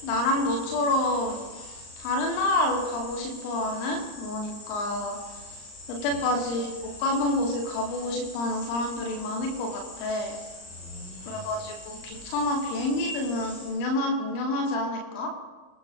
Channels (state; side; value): late; right; 38 ms